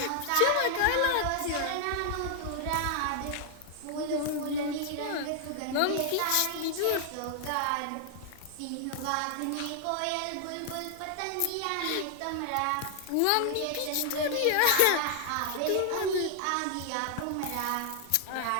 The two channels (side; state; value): both; different; correlation 0.00